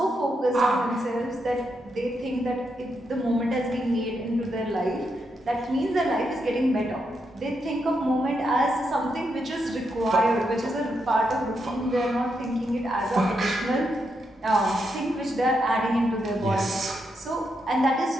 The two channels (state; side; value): normal; both; correlation 0.82